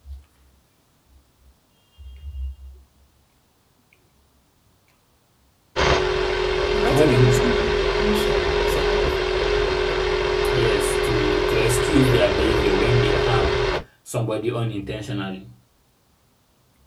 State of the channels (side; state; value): both; identical; correlation 1.00